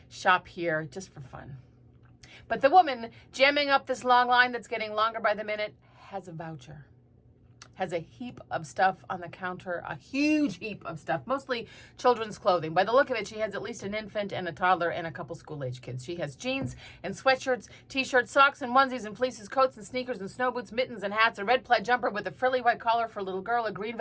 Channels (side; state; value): both; identical; correlation 1.00